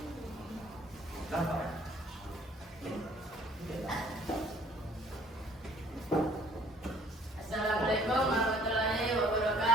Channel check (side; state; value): both; normal; correlation 0.58